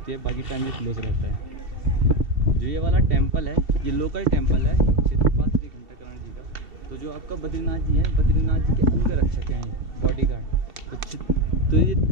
है, बाकी टाइम ये क्लोज रहता है। जो ये वाला टेम्पल है ये लोकल टेम्पल है क्षेत्रपाल श्री घंटाकरण जी का। तो जो आपका बद्रीनाथ जी है, बद्रीनाथ जी के अंग रक्षक हैं, बॉडी गार्ड। तो ये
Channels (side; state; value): left; late; 2.7 ms